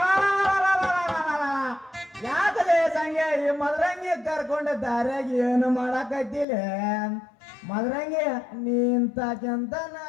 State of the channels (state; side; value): drops out; right; at 6.5 s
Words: ಯಾಕಲೇ ಸಂಗೆ ಈ ಮದರಂಗಿ ಕರ್ಕೊಂಡ ದಾರ್ಯಾಗ ಏನು ಮಾಡಾಕತ್ತಿಲ್ಲ? ಮದರಂಗಿ ನೀ ಇಂತಕ್ಕಿಂತ ನಾ